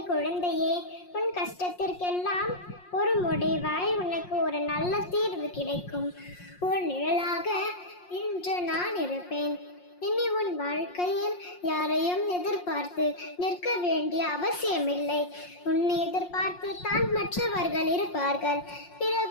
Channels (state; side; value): late; right; 5.6 ms